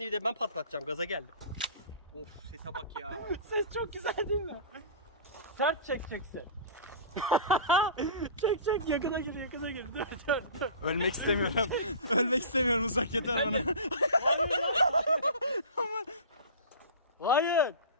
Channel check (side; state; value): both; inverted; correlation -0.36